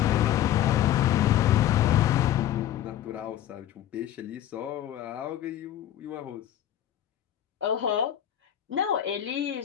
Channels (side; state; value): right; quieter; 11.6 dB